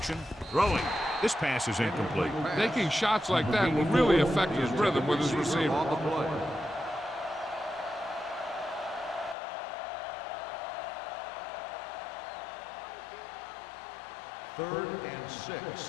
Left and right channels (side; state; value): right; drops out; at 9.3 s